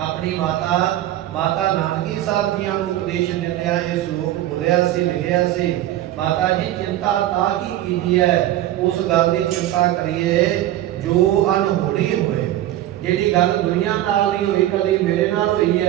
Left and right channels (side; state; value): left; quieter; 13.7 dB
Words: ਮਾਤਾ ਨਾਨਕੀ ਸਾਹਿਬ ਜੀਆਂ ਨੂੰ ਉਪਦੇਸ਼ ਦਿੰਦਿਆਂ ਇਹ ਸ਼ਲੋਕ ਬੋਲਿਆ ਸੀ, ਲਿਖਿਆ ਸੀ। ਮਾਤਾ ਜੀ, ਚਿੰਤਾ ਤਾਂ ਕੀ ਕੀਤੀ ਹੈ, ਉਸ ਗੱਲ ਦੀ ਚਿੰਤਾ ਕਰੀਏ ਜੋ ਅਨਹੋਣੀ ਹੋਏ। ਜਿਹੜੀ ਗੱਲ ਦੁਨੀਆ ਨਾਲ ਨਹੀਂ ਹੋਈ, ਕਦੀ ਮੇਰੇ ਨਾਲ ਹੋਈ